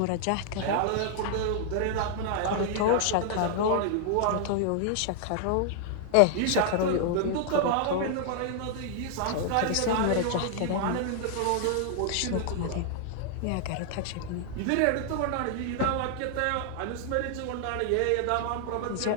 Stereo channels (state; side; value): different; both; correlation 0.00